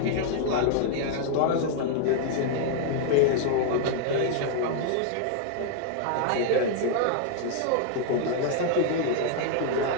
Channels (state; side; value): different; both; correlation 0.00